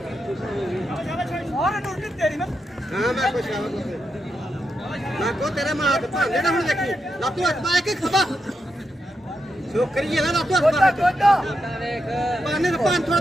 हाँ मैं खुश मैं को तेरे मां हाथ भांगे ना हुन देखी लातू हाथ पा के खबा छोकरी है ना लातू हाथ पा पानी का पान थोड़ा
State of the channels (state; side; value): normal; both; correlation 0.85